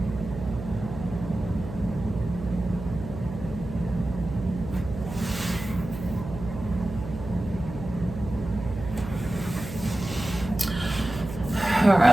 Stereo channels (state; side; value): noise; right; hum, 9 dB below the sound